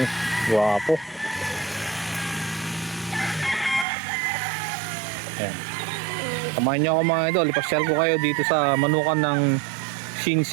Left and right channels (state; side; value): drops out; left; at 3.9 s